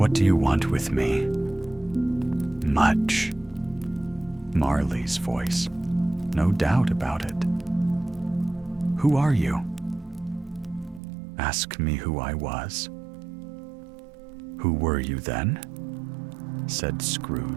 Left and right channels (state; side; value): drops out; left; at 11.0 s